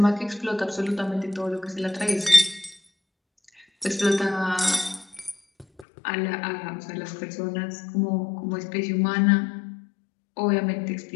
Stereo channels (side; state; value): right; drops out; at 5.9 s